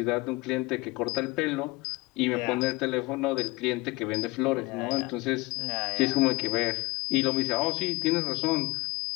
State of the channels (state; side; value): quieter; right; 23.2 dB